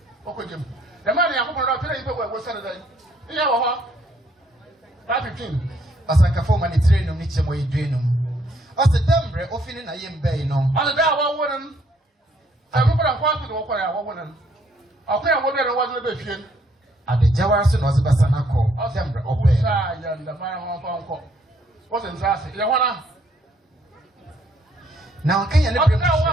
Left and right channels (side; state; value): both; normal; correlation 0.68